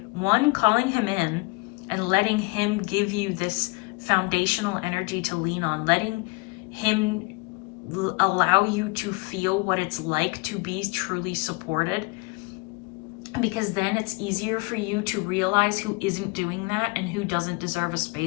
one, calling him in and letting him give you this foundational energy to lean on, letting him allow you to feel what it's like to be truly supported, because then it's easier for you to realize who isn't doing that and who doesn't deserve a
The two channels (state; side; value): quieter; right; 28.3 dB